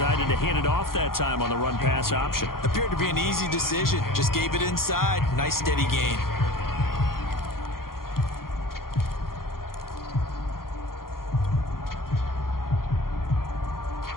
to hand it off that time on the run-pass option. Appeared to be an easy decision. Just gave it inside. Nice steady gain.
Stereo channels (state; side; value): late; right; 0.92 ms